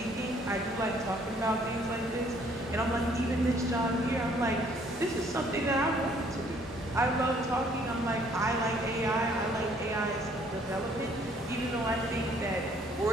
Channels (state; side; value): normal; both; correlation 0.62